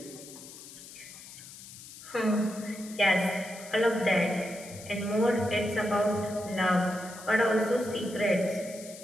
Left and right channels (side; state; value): left; noise; hiss, 16 dB below the sound